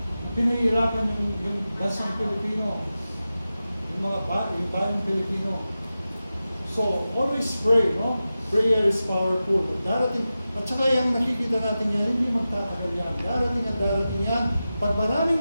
pinahihirapan yung bansang Pilipino, yung bayang Pilipino. So, always pray, no? Prayer is powerful. Darating, at saka yung nakikita natin yan, hindi magtatagal yan. Darating yan. Pag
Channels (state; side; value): inverted; both; correlation -0.93